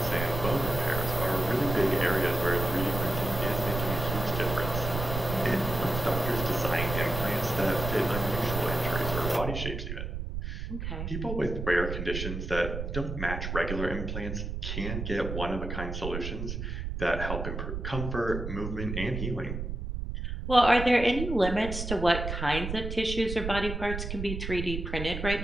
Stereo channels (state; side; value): noise; right; rumble, 5 dB below the sound